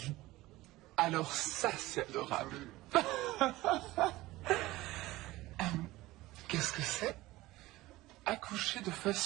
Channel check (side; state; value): left; quieter; 18.4 dB